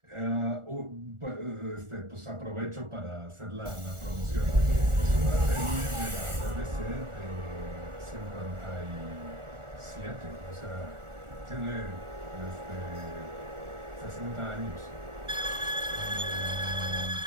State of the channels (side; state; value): left; late; 1.4 ms